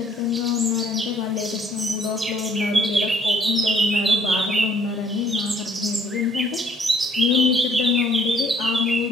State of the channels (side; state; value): both; normal; correlation 0.61